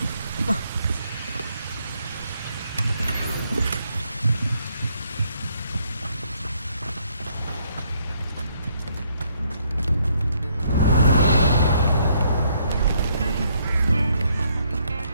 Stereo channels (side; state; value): both; inverted; correlation -0.70